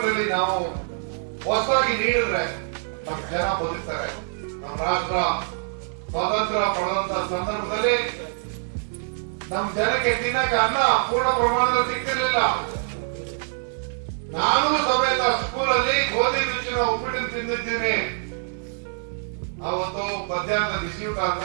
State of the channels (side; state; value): left; silent; 62 dB below the other